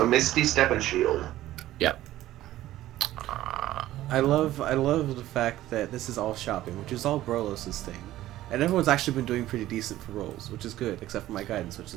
Misty Step and Shield. Yep. I love the fact that this is all shopping, which is all Brolos' thing. And everyone's actually been doing pretty decent for rolls, which is good, except for my guidance, which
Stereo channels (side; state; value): left; quieter; 14.6 dB